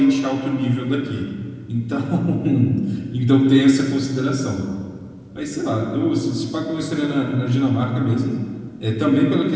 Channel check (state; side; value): identical; both; correlation 1.00